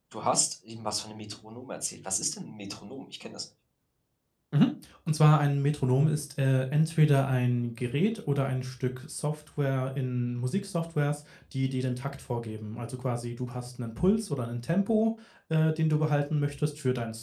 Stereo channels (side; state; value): both; identical; correlation 1.00